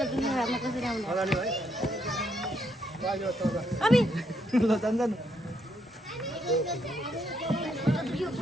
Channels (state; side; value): normal; both; correlation 0.75